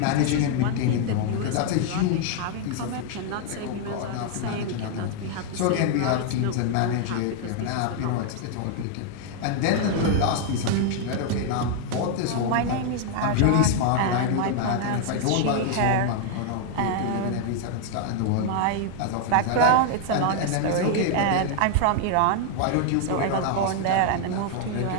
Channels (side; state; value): both; different; correlation 0.00